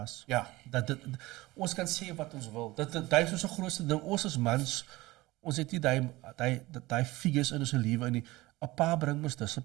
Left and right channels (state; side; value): quieter; left; 19.7 dB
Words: Ja. Ons kan sê wat ons wil. Dit is ons grootste ding. Ons as mans, ons het nie daai figures in ons lewe nie. 'n Pa bring ons